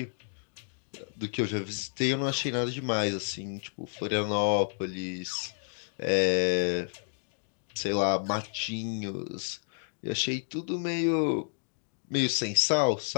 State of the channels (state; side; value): silent; right; digital silence